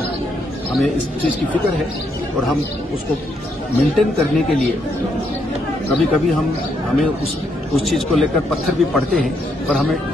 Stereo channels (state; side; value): normal; both; correlation 0.76